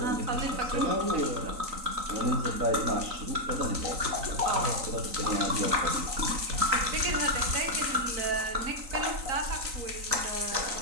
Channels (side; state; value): left; late; 3.9 ms